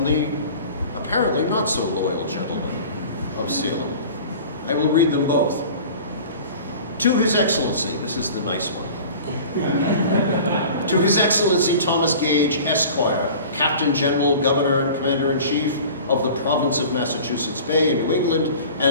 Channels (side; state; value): both; inverted; correlation -0.41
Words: the apparently not so loyal gentleman of Salem. I will read them both. To His Excellency, this is the nice one. To His Excellency Thomas Gage, Esquire, Captain General, Governor, and Commander-in-Chief of the Province of Massachusetts Bay in New England,